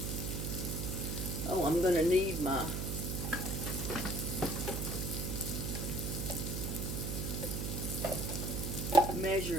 Oh, I'm going to need my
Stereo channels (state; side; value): noise; right; hum, 2 dB below the sound